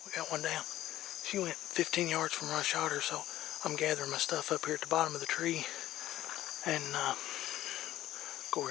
we got one down. She went 15 yards from where I shot her, so I'm gathering my stuff up here at the bottom of the tree and go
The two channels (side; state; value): right; quieter; 14.1 dB